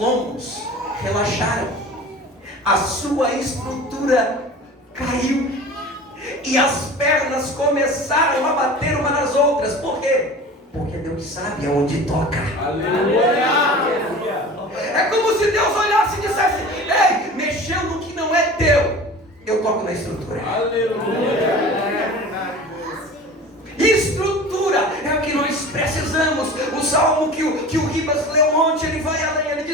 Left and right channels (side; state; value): both; normal; correlation 0.38